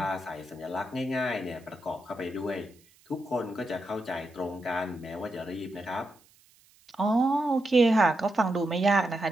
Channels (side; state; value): right; noise; hiss, 30 dB below the sound